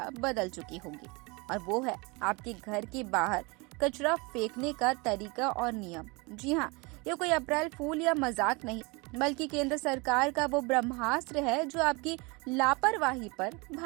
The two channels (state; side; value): quieter; left; 27.3 dB